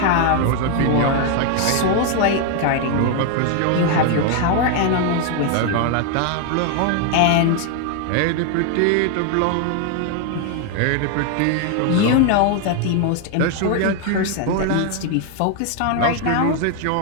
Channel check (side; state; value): both; different; correlation 0.01